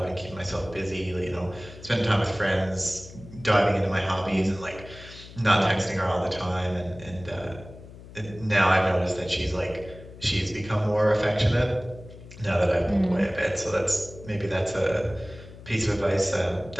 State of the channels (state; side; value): noise; left; hum, 17 dB below the sound